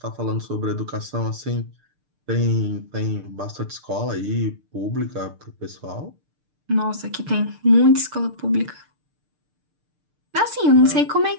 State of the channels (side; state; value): left; late; 6.6 ms